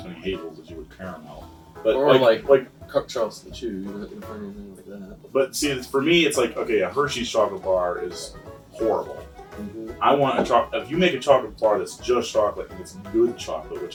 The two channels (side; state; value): both; identical; correlation 1.00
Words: many hazels as you would caramel. But Or like Charleston Chew. You wouldn't find anything like that. But see, for me, it's like, okay, a Hershey's chocolate bar is horrible. Mm-hmm. I want a chocolate. If you make a chocolate bar that's just chocolate and it's good chocolate,